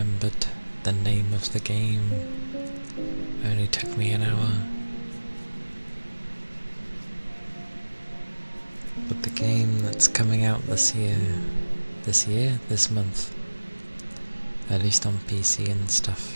the name of the game. Only took me an hour. But the game that's coming out this month, at least on PC and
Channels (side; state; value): both; inverted; correlation -1.00